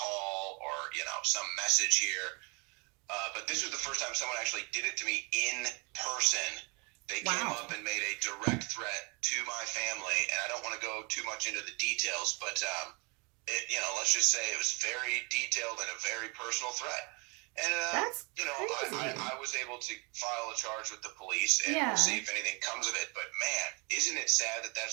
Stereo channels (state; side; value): quieter; left; 31.1 dB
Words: or, some message here. But this was the first time someone actually did it to me in person. They came up and made a direct threat to my family. And I don't want to go too much into the details, but, let's just say it was very detailed and a very personal threat. And, that's crazy. I was able to file a charge with the police, and we'll see if anything comes of it. But, man, isn't it sad that